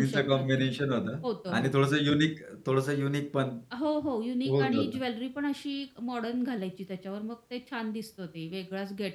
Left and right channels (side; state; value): both; identical; correlation 1.00